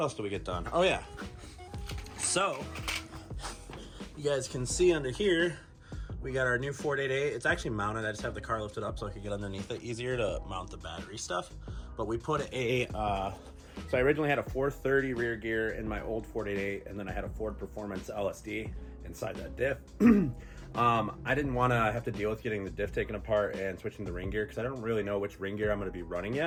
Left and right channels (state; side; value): identical; both; correlation 1.00